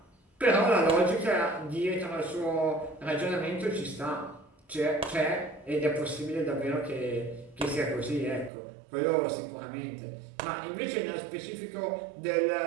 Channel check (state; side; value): drops out; left; at 8.5 s